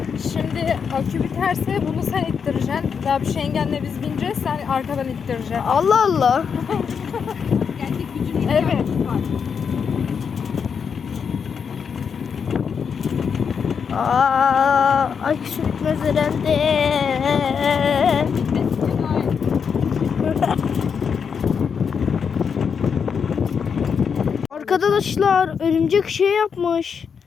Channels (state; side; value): quieter; right; 6.5 dB